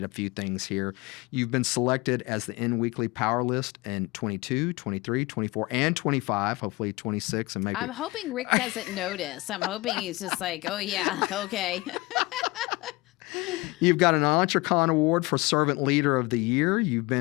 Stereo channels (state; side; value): quieter; right; 22.9 dB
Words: a few things here. You've been selected as the N Weekly Power List in 22, 23, 24, and 25, hopefully 26. And maybe I'm hoping Rick doesn't notice. I'm hoping he's just like, oh, yeah, okay. You've got an Entrecon Award for Servant Leader of the Year. You've